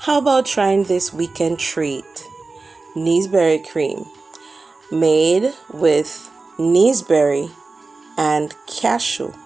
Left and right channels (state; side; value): quieter; left; 3.8 dB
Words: How about trying this weekend treat? Naseberry cream, made with naseberry and cashew